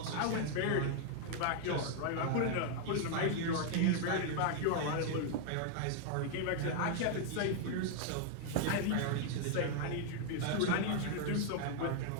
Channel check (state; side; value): different; both; correlation 0.00